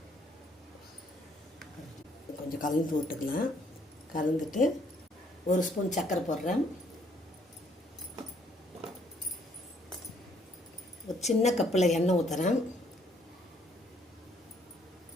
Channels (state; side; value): normal; both; correlation 0.66